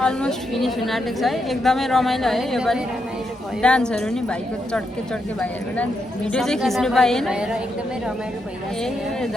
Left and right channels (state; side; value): normal; both; correlation 0.82